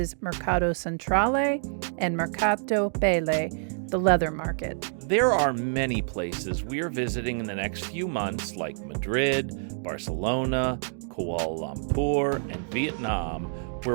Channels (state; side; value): silent; left; digital silence